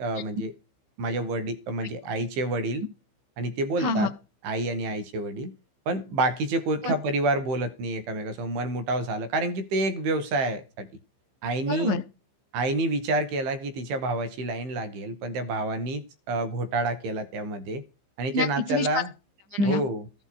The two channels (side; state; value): left; late; 15 ms